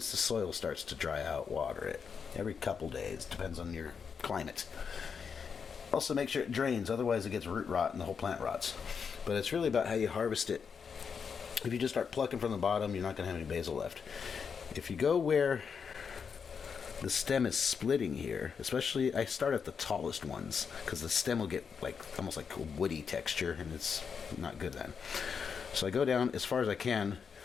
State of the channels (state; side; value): quieter; right; 6.3 dB